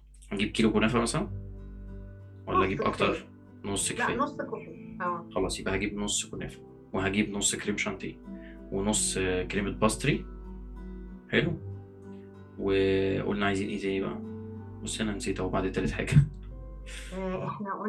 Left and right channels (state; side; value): identical; both; correlation 1.00